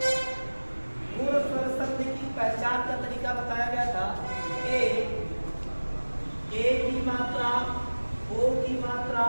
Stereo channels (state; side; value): inverted; both; correlation -1.00